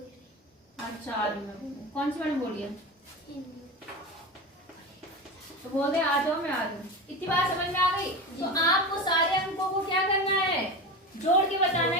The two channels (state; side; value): normal; both; correlation 0.25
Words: अच्छा, कौन सी वाली बोली है? तो बोल दे आ जाओ, मैं आ जाऊँ। इतनी बात समझ में आ गई? तो आपको सारे अंकों को क्या करना है? जोड़ के बताना